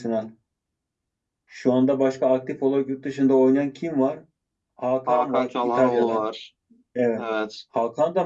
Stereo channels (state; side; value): identical; both; correlation 1.00